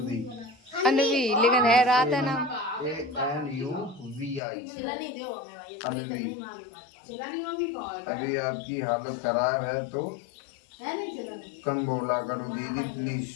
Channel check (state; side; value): drops out; right; at 4.4 s